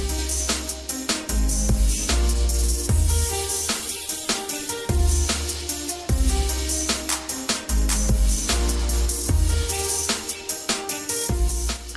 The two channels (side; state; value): both; identical; correlation 1.00